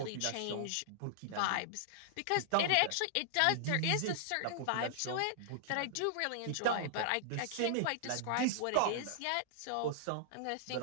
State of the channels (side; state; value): both; different; correlation -0.01